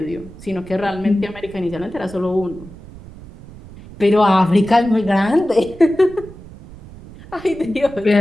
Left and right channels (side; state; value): right; noise; rumble, 18 dB below the sound